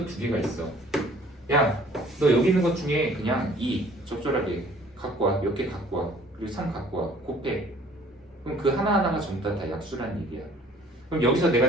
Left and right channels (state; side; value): normal; both; correlation 0.54